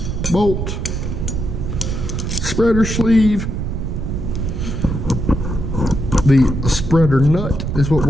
bolt, spreader sleeve. The spreader nut is what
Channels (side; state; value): right; noise; rumble, 3 dB below the sound